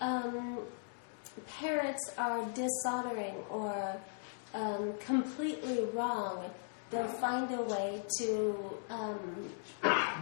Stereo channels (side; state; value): right; silent; digital silence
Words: parents are dishonoring or completely wrong, they'll find a way to